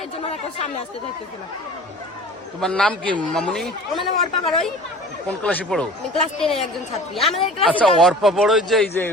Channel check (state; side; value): normal; both; correlation 0.42